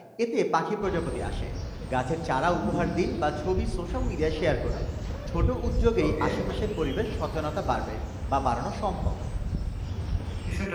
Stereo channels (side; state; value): both; identical; correlation 1.00